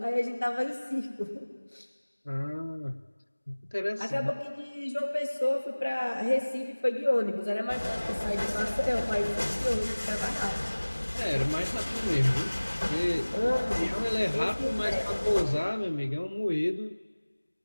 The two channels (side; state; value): both; inverted; correlation -1.00